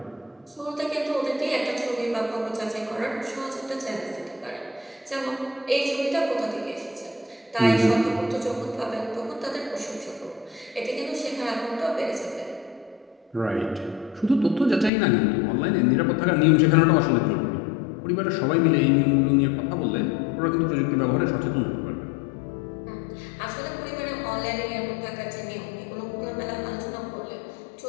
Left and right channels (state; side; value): drops out; right; at 14.9 s